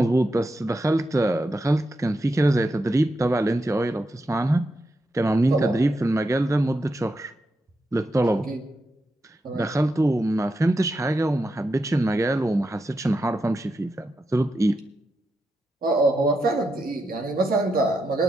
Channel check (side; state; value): both; normal; correlation 0.86